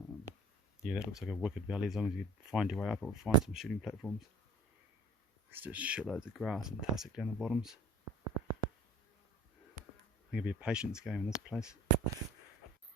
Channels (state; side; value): normal; both; correlation 0.47